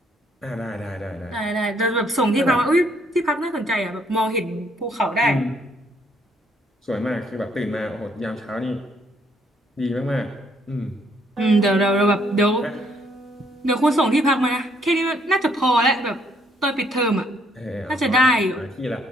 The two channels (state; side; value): normal; both; correlation 0.68